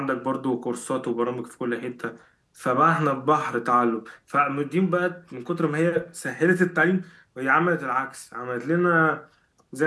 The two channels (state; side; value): identical; both; correlation 1.00